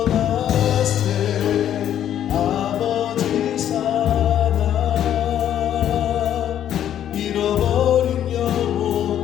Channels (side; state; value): right; quieter; 10.6 dB